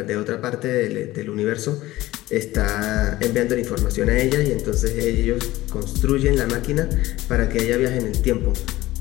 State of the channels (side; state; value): right; quieter; 17.2 dB